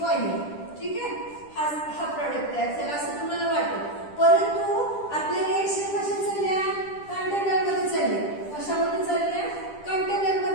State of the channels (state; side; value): late; right; 10 ms